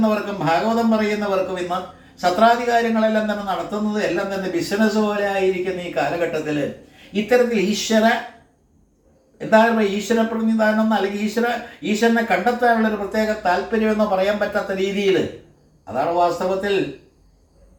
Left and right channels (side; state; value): both; identical; correlation 1.00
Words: ഭാഗവതം പറയുന്നവർക്കും ഇന്ന് സത്രാധികാരങ്ങളെല്ലാം തന്നെ നടത്തുന്നത് എല്ലാം തന്നെ ബിസിനസ് പോലെ ആയിരിക്കുന്ന ഈ കാലഘട്ടത്തിൽ ഇത്തരത്തിൽ ഈശ്വര പ്രതിനിധാനം അല്ലെങ്കിൽ ഈശ്വരനെ കണ്ടെത്താനുള്ളൊരു പ്രത്യേക താല്പര്യമെന്ന് പറയാൻ പറ്റാത്ത രീതിയിൽ, അതാണ് വാസ്തവത്തിൽ